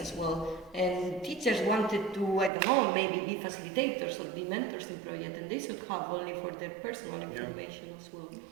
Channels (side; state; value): left; drops out; at 2.5 s